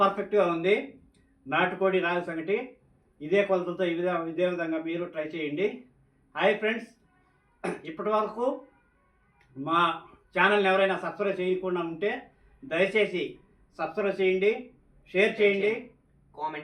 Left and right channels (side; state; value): both; identical; correlation 1.00